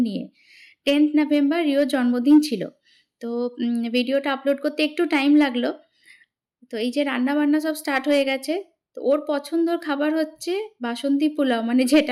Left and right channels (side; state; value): both; identical; correlation 1.00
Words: নিয়ে। 10th নভেম্বর রিওর জন্মদিন ছিল। তো ভিডিওটা আপলোড করতে একটু টাইম লাগলো। তো এই যে রান্নাবান্না সব স্টার্ট হয়ে গেছে। তো ওর পছন্দর খাবার হচ্ছে বাসন্তী পোলাও, মানে